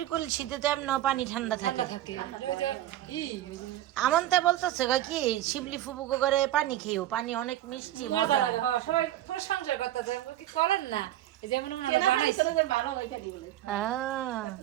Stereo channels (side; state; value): left; quieter; 13.4 dB